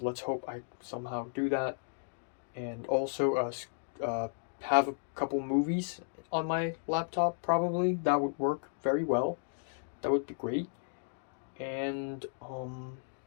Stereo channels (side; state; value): right; silent; digital silence